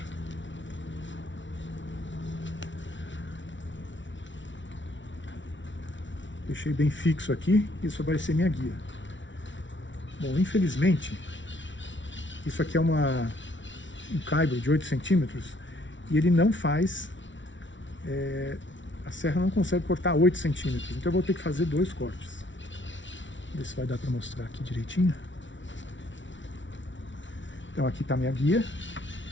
Deixei bem fixo aqui, isso vai ser minha guia. Bom, infelizmente, isso aqui é um caibro de 8 centímetros e ele não faz, a serra não consegue cortar 8 centímetros, então eu vou ter que fazer 2 cortes. Ver se vai dar para mostrar aqui direitinho. Então aqui está minha guia,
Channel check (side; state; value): right; late; 0.55 ms